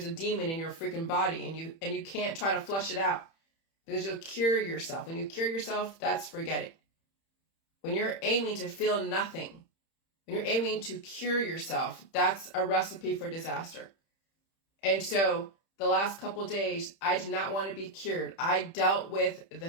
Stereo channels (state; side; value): late; right; 31 ms